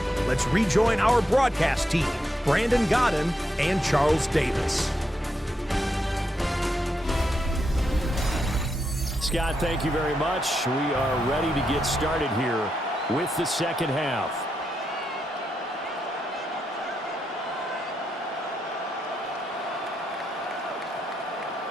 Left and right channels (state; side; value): normal; both; correlation 0.83